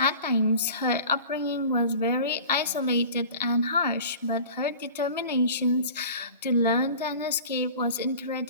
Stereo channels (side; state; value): both; inverted; correlation -0.41